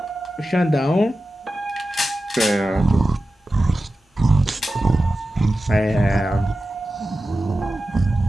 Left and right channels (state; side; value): normal; both; correlation 0.94